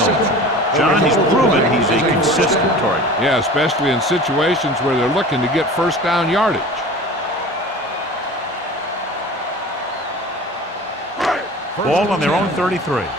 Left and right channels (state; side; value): normal; both; correlation 0.39